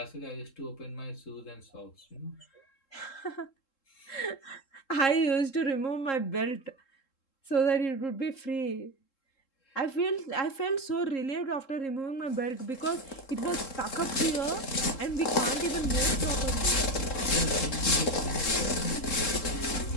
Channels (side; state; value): right; late; 3.7 ms